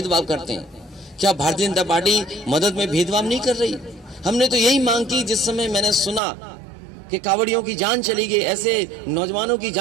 करते हैं। क्या भारतीय जनता पार्टी मदद में भेदभाव नहीं कर रही? हमने तो यही मांग की जिस समय मैंने सुना कि कांवड़ियों की जान चली गई, ऐसे नौजवानों की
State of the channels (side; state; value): left; drops out; at 6.2 s